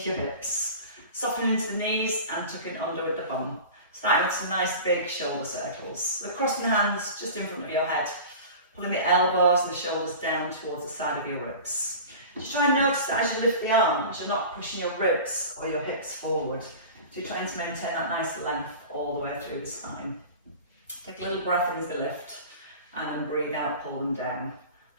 your hips. Soften into the knees and tuck it under with the bum. Starting with some nice big shoulder circles. So crossing the hands just in front of your head. Pulling the elbows and the shoulders down towards the side of your ribs. Just try and notice that as you lift the arms, you're not pushing your ribs or your hips forward. So you're trying to maintain that nice length all the way through the spine. Take a little breath in as the lift and then breathe out, pull them down.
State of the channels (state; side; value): inverted; both; correlation -0.37